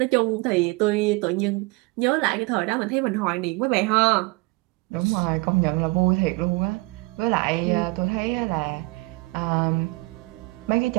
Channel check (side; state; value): left; quieter; 24.5 dB